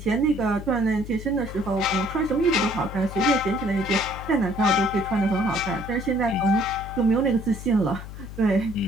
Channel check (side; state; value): left; noise; hum, 11 dB below the sound